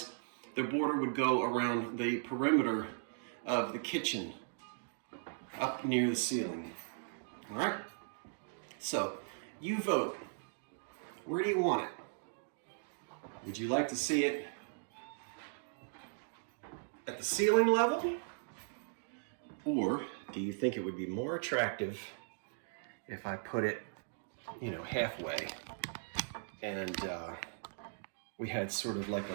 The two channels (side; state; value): left; silent; digital silence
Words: the border would go around the perimeter of the kitchen, up near the ceiling. All right? So, you vote. Where do you want it? Would you like to see it at the ceiling level? Or do you think it would be more attractive if I put it, halfway and we had sort of like a